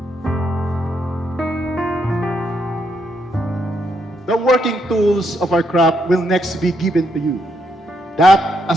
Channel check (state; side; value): normal; both; correlation 0.77